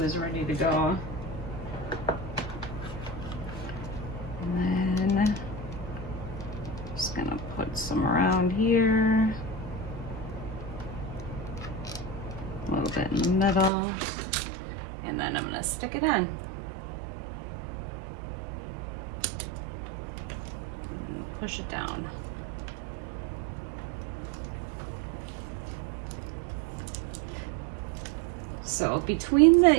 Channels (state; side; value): drops out; left; at 13.7 s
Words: is ready to go. And then just gonna put some around here, a little bit in the middle, and then I'm gonna stick it on. And push it down. So between the